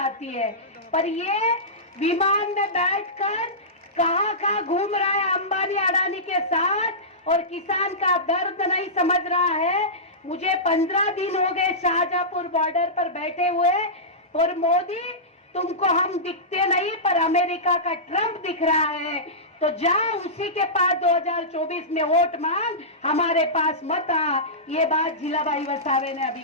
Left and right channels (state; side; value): normal; both; correlation -0.17